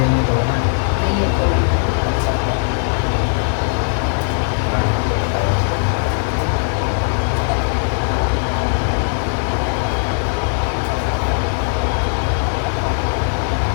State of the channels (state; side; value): silent; right; 63 dB below the other